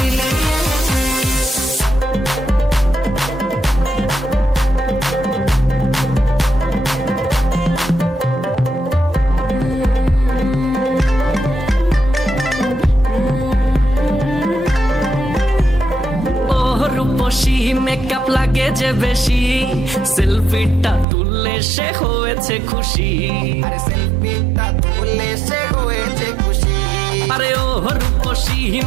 রূপসী মেকআপ লাগে যে বেশি, সেলফিটা তুললে সে হয়েছে খুশি। আরে সেলফিটা তুললে সে হয়েছে খুশি। আরে ও রূপসী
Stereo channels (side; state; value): left; drops out; at 21.1 s